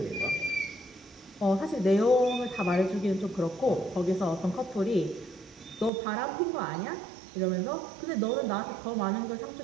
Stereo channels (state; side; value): drops out; left; at 5.9 s